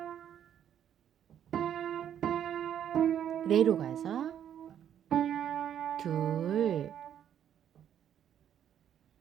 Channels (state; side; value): quieter; left; 9.7 dB